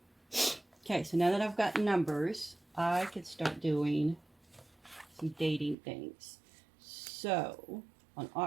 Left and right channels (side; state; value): left; drops out; at 5.8 s